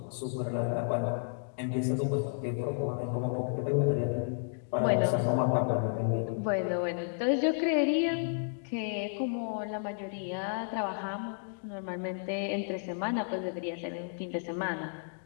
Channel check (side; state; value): right; silent; digital silence